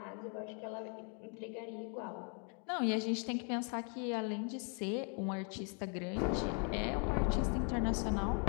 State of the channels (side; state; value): right; quieter; 39.9 dB